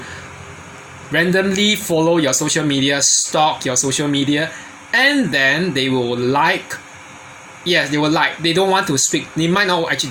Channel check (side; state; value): both; identical; correlation 1.00